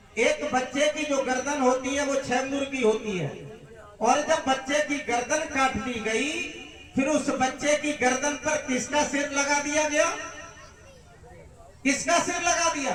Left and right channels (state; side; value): identical; both; correlation 1.00